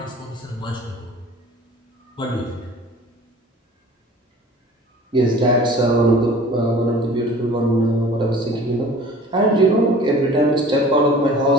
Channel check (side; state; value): both; normal; correlation 0.45